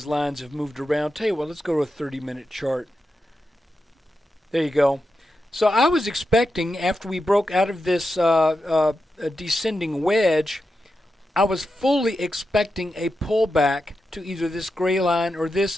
lines have moved around. Tell you what, let's go to a 30-minute chart. There you go. So I was expecting, after we broke out of this descending wedge, I was fully expecting a pullback to either this gray line or this,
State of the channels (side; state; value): both; normal; correlation 0.89